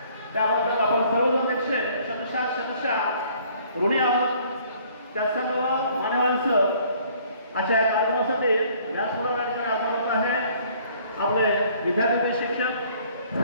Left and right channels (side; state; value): both; inverted; correlation -0.58